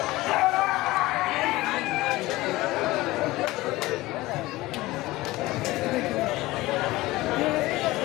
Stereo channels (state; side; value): quieter; right; 19.0 dB